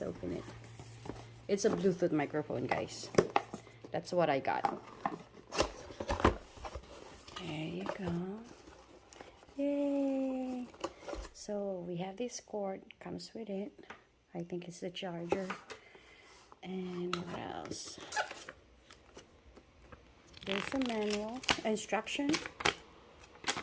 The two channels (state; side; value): identical; both; correlation 1.00